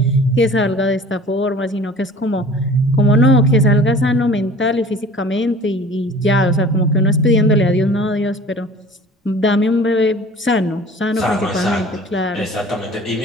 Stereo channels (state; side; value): normal; both; correlation 0.45